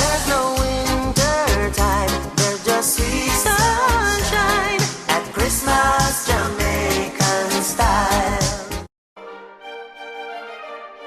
no winter time, there's just sweet sunshine at Christmas Jamaican style.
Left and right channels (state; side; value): identical; both; correlation 1.00